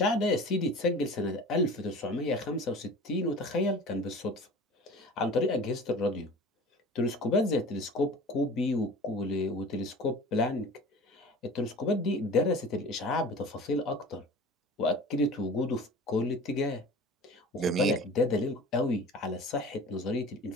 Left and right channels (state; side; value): normal; both; correlation 0.40